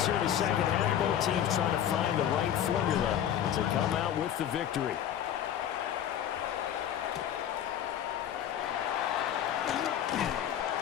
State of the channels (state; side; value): quieter; right; 10.3 dB